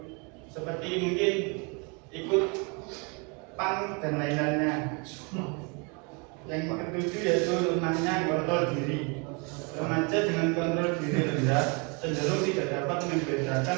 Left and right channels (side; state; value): left; quieter; 32.3 dB